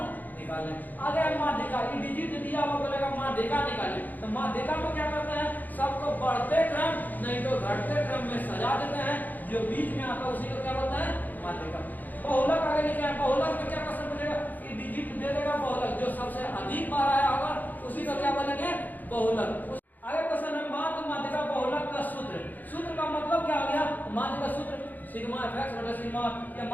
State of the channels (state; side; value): late; right; 0.084 ms